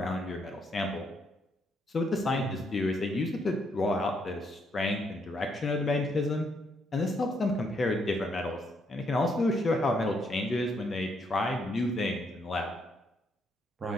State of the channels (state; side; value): normal; both; correlation 0.74